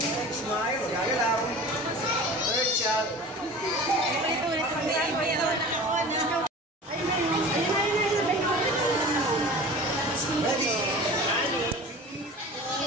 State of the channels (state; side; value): normal; both; correlation 0.38